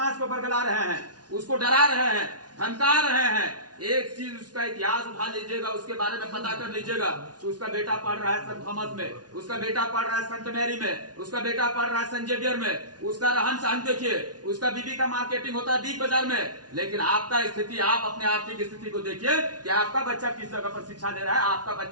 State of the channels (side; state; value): left; late; 0.69 ms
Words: को बरगला रहे हैं, उसको डरा रहे हैं, धमका रहे हैं। एक चीज उसका इतिहास उठा लीजिएगा, उसके बारे में पता कर लीजिएगा। उसका बेटा पढ़ रहा है सेंट थॉमस में, उसका बेटा पढ़ रहा है सेंट मैरी में, उसका बेटा पढ़ रहा है सेंट जेवियर में। उसका रहन सहन देखिए, उसका बीबी का मार्केटिंग होता है बिग बाजार में। लेकिन आपका स्थिति, आप अपने आर्थिक स्थिति को देखिए कि आपका बच्चा किस जगह पर शिक्षा ले रहा है, आपका